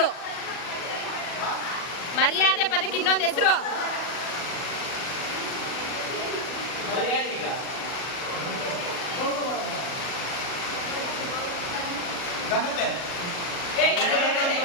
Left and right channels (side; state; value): right; late; 40 ms